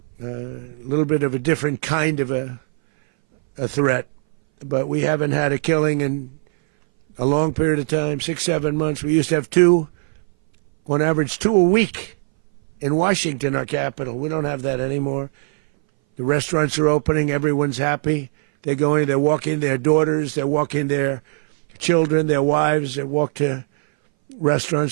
A little bit of a different kind of a threat, but we haven't had a killing in a long period of time, 6, 7 months. We used to have two, on average, 2 a week in Washington, our capital. We don't have that anymore. The restaurants are opening. Everyone's happy. They're going, they're walking their daughters, they're walking their children, their wives. They walk to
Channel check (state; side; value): silent; left; 61 dB below the other